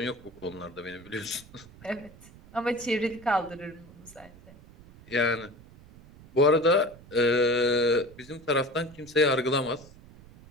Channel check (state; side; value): noise; right; rumble, 21 dB below the sound